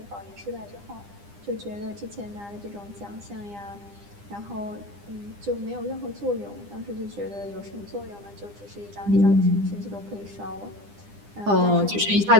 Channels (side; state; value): left; late; 9.9 ms